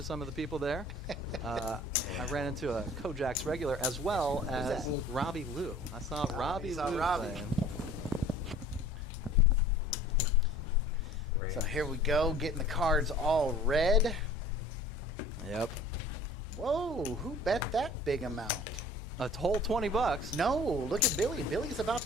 some of the people there. I ran into a Kojak's regular as well as Robbie Lou. I saw Robbie you saw Lou Robbie. playing. So here we go, getting the cards all red. Yep. Whoa, who bet that big amount? A whole $20. No, look at Billy. Billy's about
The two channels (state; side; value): normal; both; correlation 0.47